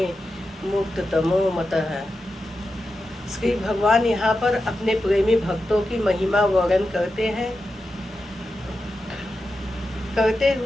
मुक्ततमो मतः। श्री भगवान यहाँ पर अपने प्रेमी भक्तों की महिमा वर्णन करते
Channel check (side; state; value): both; normal; correlation 0.90